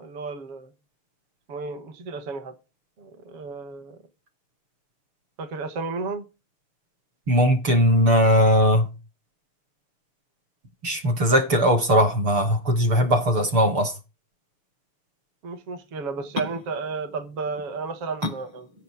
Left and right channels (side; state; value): left; late; 6.7 ms